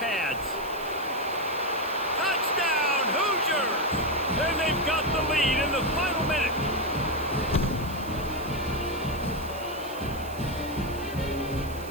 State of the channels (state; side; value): noise; right; hiss, 19 dB below the sound